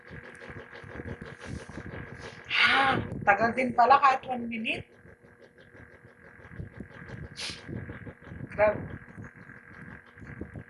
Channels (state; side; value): identical; both; correlation 1.00